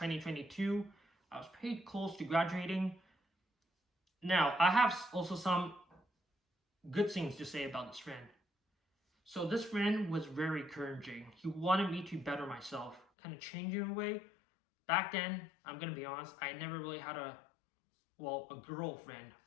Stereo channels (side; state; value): right; drops out; at 13.1 s